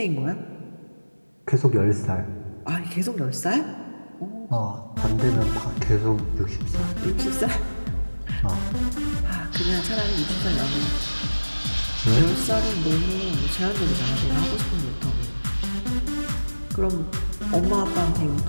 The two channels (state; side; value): inverted; both; correlation -1.00